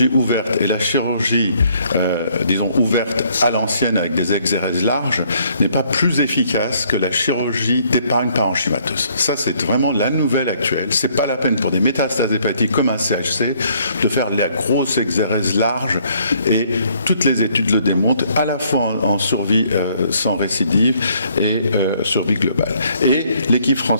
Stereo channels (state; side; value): inverted; both; correlation -0.65